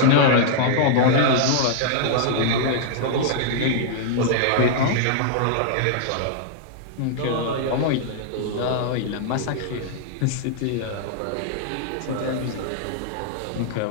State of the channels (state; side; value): different; both; correlation -0.01